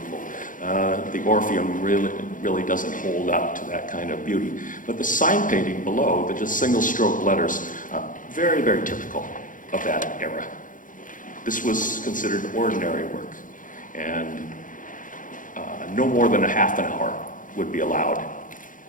the Orpheum really doesn't hold up to that kind of beauty. But the sign painting below, the just single stroke letters, very, very typical of that era. This was considered ordinary work, and no more than a half an hour would be allowed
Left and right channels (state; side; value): late; right; 0.38 ms